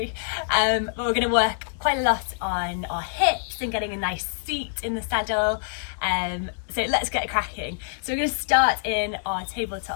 But we're going to work quite a lot on our hips and getting a nice seat in the saddle. So let's get cracking. So we're going to start in our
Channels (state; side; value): silent; right; 61 dB below the other